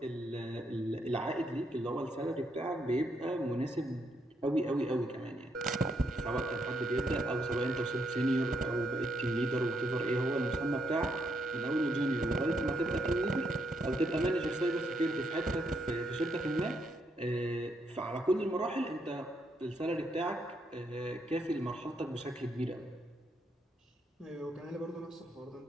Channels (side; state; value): both; normal; correlation 0.76